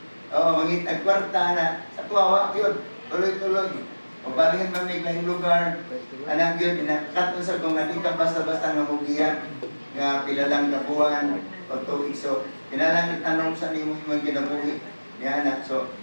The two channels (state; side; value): inverted; both; correlation -1.00